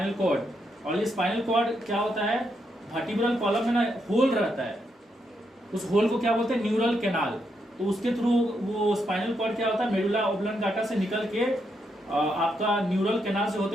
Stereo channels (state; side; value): normal; both; correlation 0.80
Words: कॉर्ड। और ये स्पाइनल कॉर्ड क्या होता है, वर्टिब्रल कॉलम में ना होल रहता है, उस होल को क्या बोलते हैं, न्यूरल कैनाल। तो उसके थ्रू वो स्पाइनल कॉर्ड क्या होता है, मेडुला ऑब्लंगाटा से निकल के आपका न्यूरल कैनाल से होते